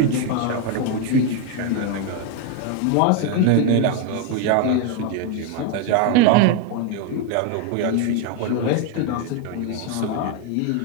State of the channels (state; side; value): different; both; correlation 0.01